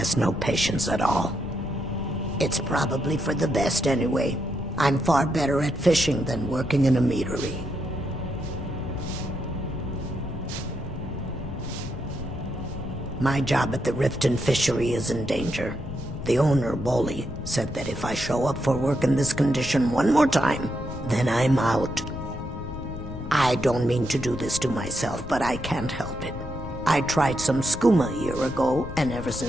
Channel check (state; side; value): noise; left; rumble, 9 dB below the sound